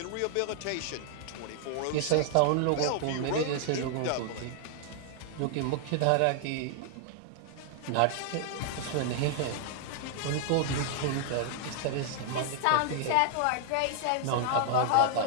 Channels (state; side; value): different; both; correlation 0.00